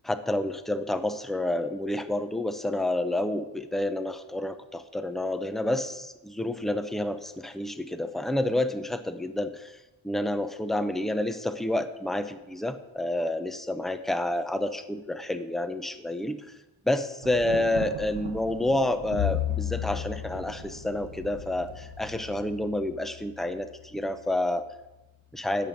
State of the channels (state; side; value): normal; both; correlation 0.82